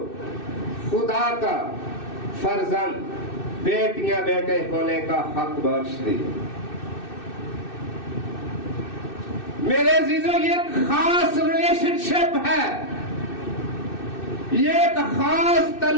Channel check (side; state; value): right; late; 2.6 ms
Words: خدا کا فرزند, بیٹیاں بیٹے ہونے کا حق بخش دیا. میرے عزیزوں, یہ ایک خاص ریلیشن شپ ہے, یہ ایک خاص